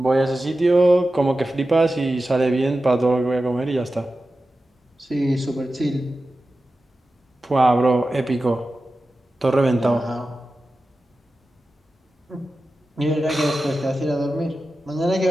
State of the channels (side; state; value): both; normal; correlation 0.93